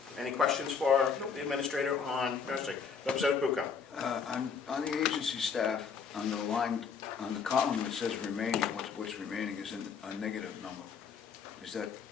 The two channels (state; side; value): quieter; right; 6.2 dB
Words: Any questions for the administrator on nursing? Representative Bucco? On the agency staff, on the line, on the column that says remaining, what's remaining is a negative number. Is that,